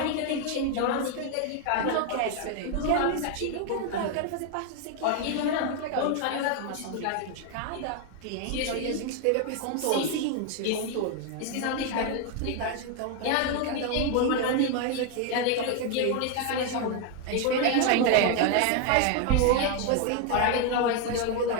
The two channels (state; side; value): different; both; correlation 0.01